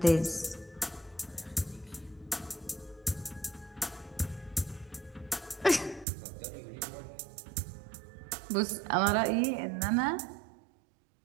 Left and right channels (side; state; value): left; drops out; at 6.1 s